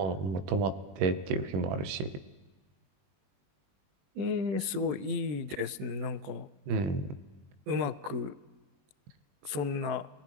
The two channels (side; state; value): left; late; 21 ms